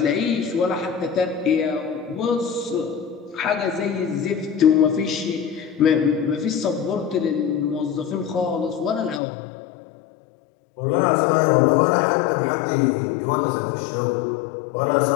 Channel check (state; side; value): drops out; right; at 9.2 s